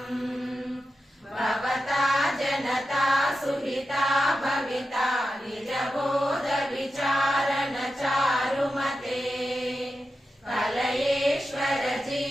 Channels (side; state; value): both; normal; correlation 0.91